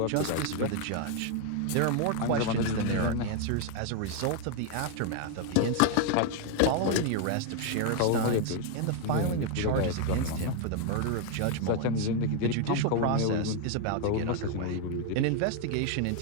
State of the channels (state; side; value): different; both; correlation 0.01